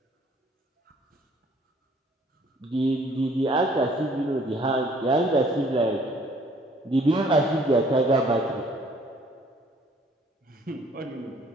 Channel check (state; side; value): normal; both; correlation 0.59